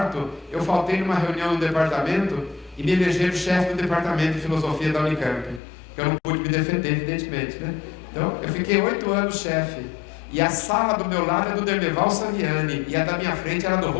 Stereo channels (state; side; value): drops out; right; at 5.6 s